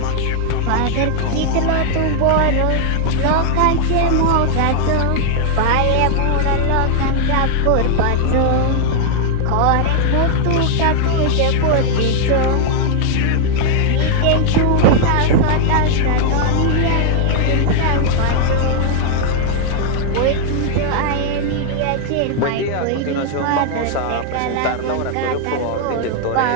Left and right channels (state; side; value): different; both; correlation -0.01